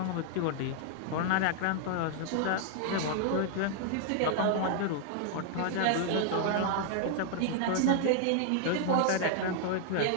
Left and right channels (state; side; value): different; both; correlation -0.01